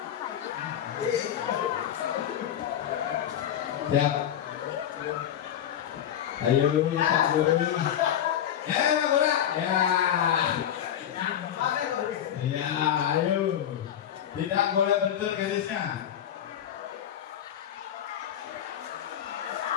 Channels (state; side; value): quieter; right; 10.2 dB